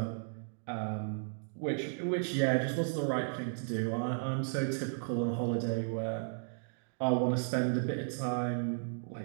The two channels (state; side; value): silent; left; digital silence